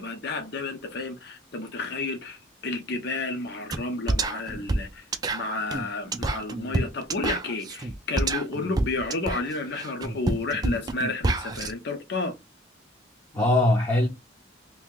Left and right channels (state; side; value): normal; both; correlation 0.47